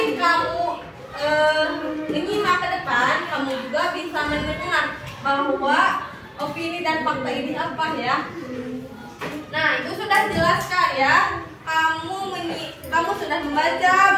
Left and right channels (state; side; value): identical; both; correlation 1.00